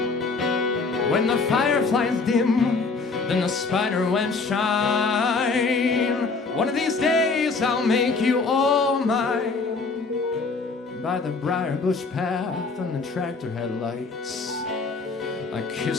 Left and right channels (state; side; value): quieter; right; 4.2 dB